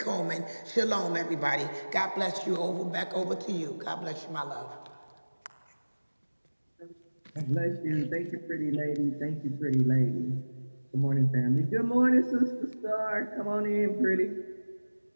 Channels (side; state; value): both; inverted; correlation -1.00